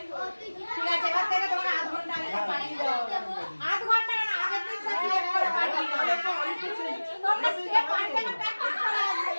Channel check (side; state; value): both; inverted; correlation -1.00